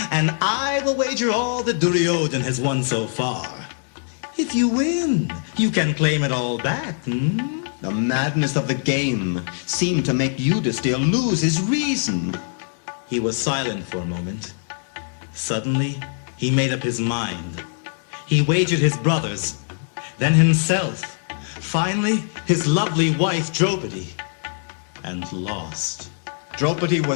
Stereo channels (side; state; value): right; silent; digital silence